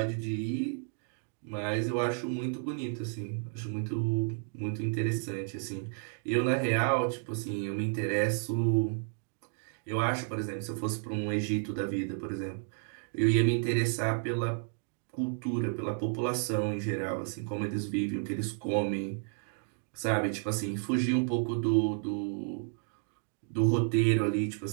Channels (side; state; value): left; silent; 56 dB below the other